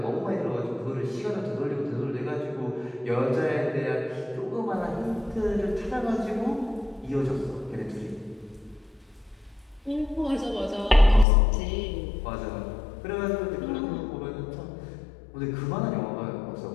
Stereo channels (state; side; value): drops out; right; at 11.2 s